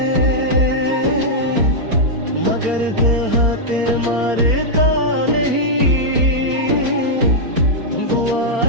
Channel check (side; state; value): left; late; 4.4 ms